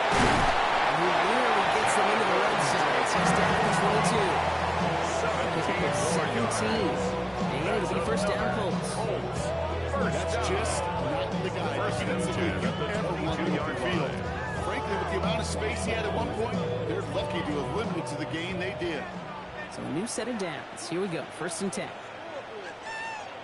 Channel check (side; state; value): both; identical; correlation 1.00